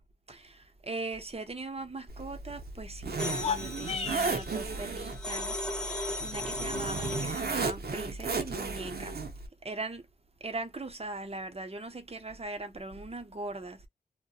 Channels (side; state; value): both; normal; correlation 0.27